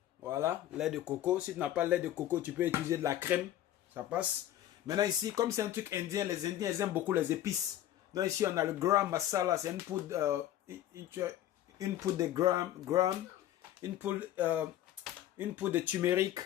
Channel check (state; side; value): quieter; right; 12.5 dB